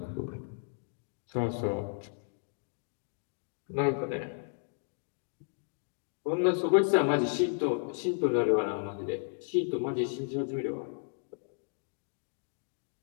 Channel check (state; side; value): silent; right; digital silence